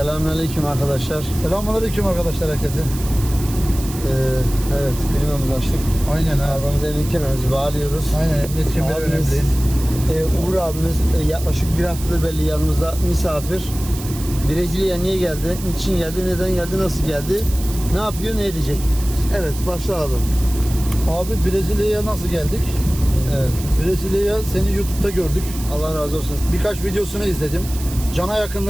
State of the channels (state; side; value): noise; right; hiss, 13 dB below the sound